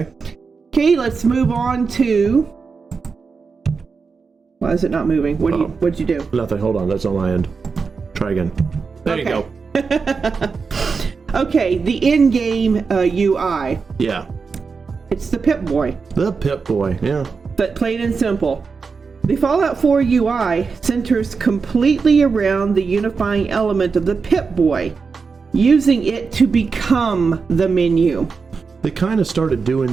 let's move on to... Why is it not moving? What'd you do? Nothing. Hold on. That's on my end. Try again. There you go. Okay, the in-game UI. Yeah. It's the Pip-Boy. The Pip-Boy, yeah. But plain and simple. The Fallout 4 UI centers completely around the unifying element of the Pip-Boy, using it to become the menu. They kind of started doing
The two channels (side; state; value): left; quieter; 5.0 dB